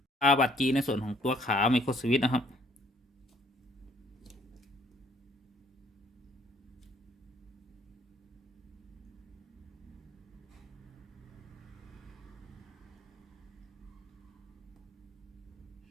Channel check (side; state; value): both; normal; correlation 0.62